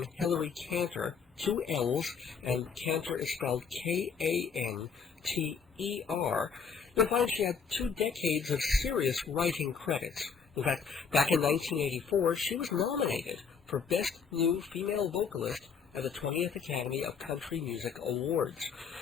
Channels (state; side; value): quieter; right; 6.0 dB